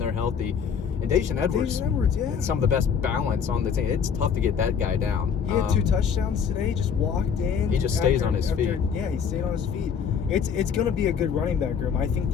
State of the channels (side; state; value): right; quieter; 7.0 dB